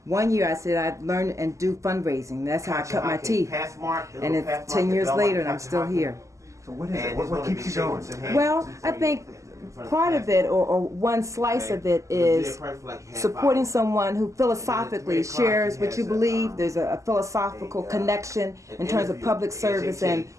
1 year I said I'd learn and do fundraising. That's how I cut my teeth. And it's 10 years later and I'm still here. So what is it? What keeps you going? Well, I think part of it, or one slice of it, is supporting someone who philosophically shares what you believe. There's a philosophical connection in terms of public service and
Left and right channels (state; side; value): late; left; 0.15 ms